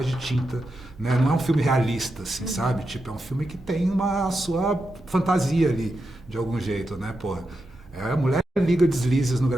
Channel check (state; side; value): normal; both; correlation 0.87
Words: de tinta, né? Não é um filme realista, assim, sabe? Tipo, é um filme que tem a sua fantasia ali, de algum jeito, né, porra? A mulher liga deslizes no